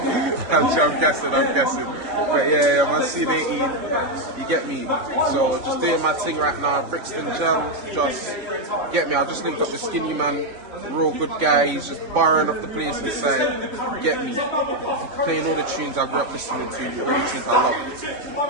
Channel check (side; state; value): left; late; 3.6 ms